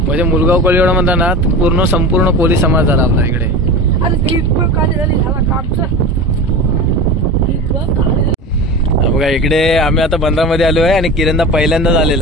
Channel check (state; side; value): normal; both; correlation 0.30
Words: मुलगाव कोळीवाडा म्हणता ना पूर्ण संपूर्ण कोळी समाज झाला आपला इकडे. बघा इकडे आम्ही आता बंदरामध्ये आलो आहे आणि किरणदा पहिल्यांदाच